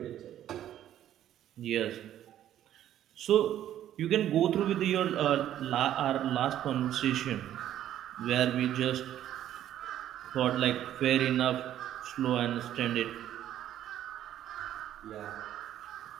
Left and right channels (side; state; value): left; quieter; 11.6 dB